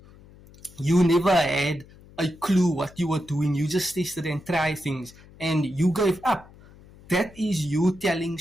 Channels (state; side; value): noise; left; hum, 23 dB below the sound